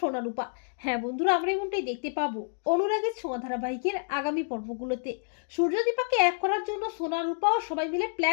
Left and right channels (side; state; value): right; silent; 59 dB below the other